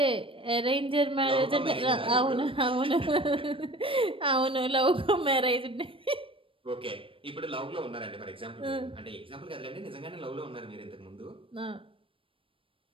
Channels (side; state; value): left; late; 0.26 ms